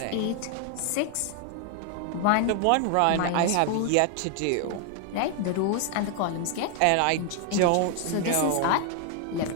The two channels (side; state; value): both; different; correlation 0.00